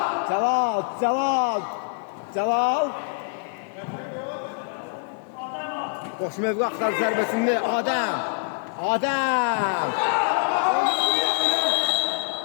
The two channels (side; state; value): right; silent; 62 dB below the other